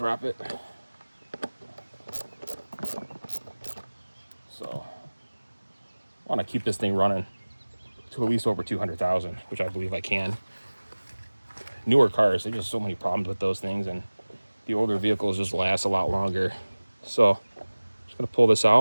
it. So I want to keep this thing running to at least over 200,000, which I believe I can. Newer cars, there's just so many problems with those things, and the older vehicles just last a lot longer. So I'm just going to pull this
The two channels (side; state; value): both; inverted; correlation -1.00